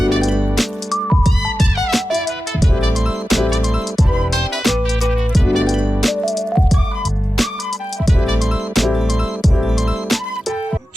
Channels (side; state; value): both; normal; correlation 0.93